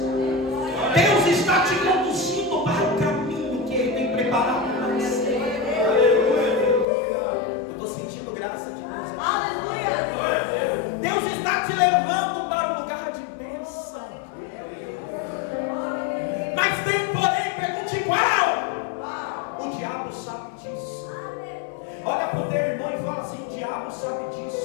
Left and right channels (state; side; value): drops out; right; at 6.9 s